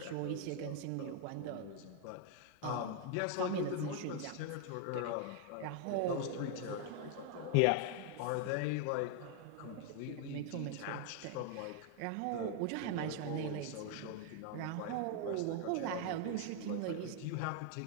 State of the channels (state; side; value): different; both; correlation 0.00